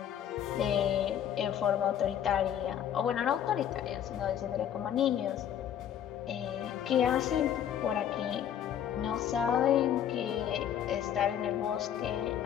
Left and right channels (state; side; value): quieter; right; 9.8 dB